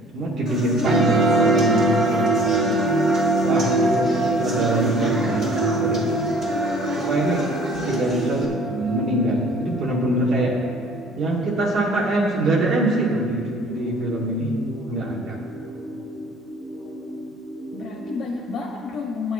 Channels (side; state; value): both; normal; correlation 0.52